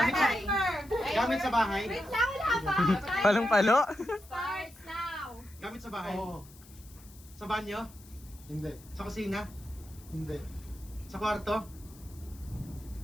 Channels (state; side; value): noise; left; hiss, 23 dB below the sound